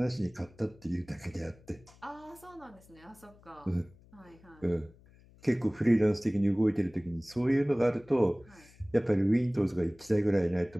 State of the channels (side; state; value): left; noise; hum, 26 dB below the sound